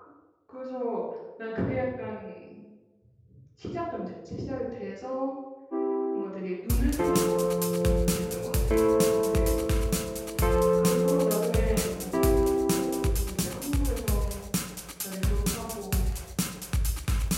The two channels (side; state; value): both; identical; correlation 1.00